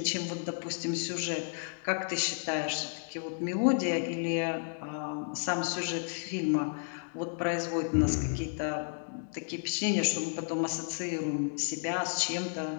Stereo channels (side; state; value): right; silent; digital silence